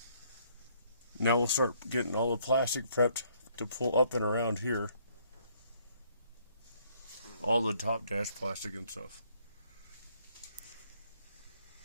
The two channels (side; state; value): both; inverted; correlation -0.67